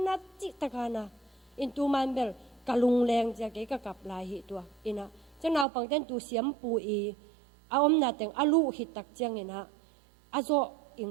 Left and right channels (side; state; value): left; drops out; at 5.7 s